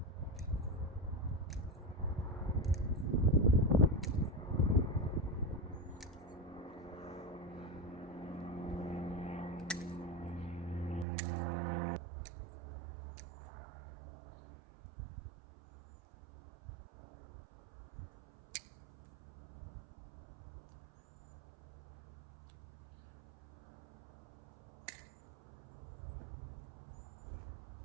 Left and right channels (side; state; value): left; drops out; at 11.1 s